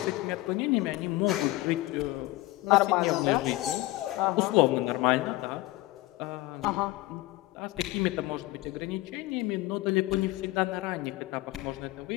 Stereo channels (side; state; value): right; quieter; 19.1 dB